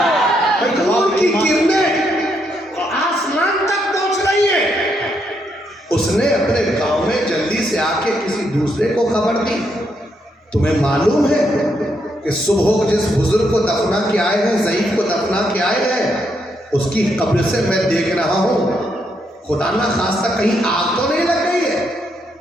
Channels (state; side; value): normal; both; correlation 0.77